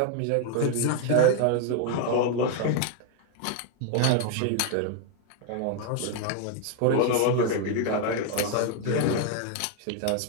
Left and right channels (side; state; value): both; different; correlation 0.00